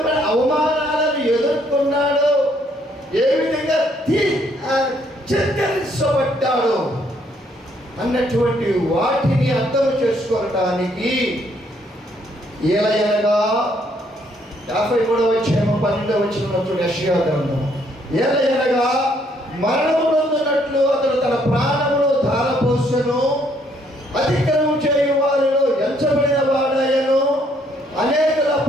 అవమానాలను ఎదుర్కొన్నాడో, ఏ విధంగా చిత్కరించబడ్డాడో అన్నటువంటి వాటిని అర్థం చేసుకోవటానికి ఏలయనగా 53వ అధ్యాయం 12వ వచనంలో చూడండి, యెషయా గ్రంథం. ఏలయనగా మరణము నొందినట్లు అతడు తన ప్రాణమును ధారపోసెను, అతిక్రమం చేయు వారిలో ఎంచబడిన వాడాయను, అనేకుల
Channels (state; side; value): normal; both; correlation 0.68